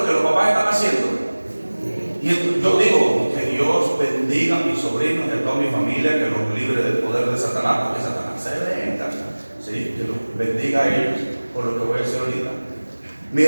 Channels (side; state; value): both; inverted; correlation -1.00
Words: que los papás están haciendo? Y yo digo, que Dios bendiga a mis sobrinos y a toda mi familia, que los libre del poder de Satanás, porque Satanás se venga, ¿sí? Que los bendiga a ellos por lo que voy a hacer ahorita. Mi